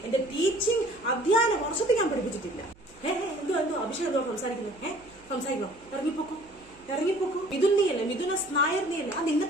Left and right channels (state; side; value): noise; right; hum, 27 dB below the sound